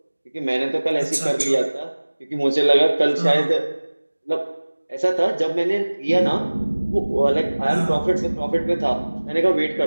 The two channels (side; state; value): both; inverted; correlation -1.00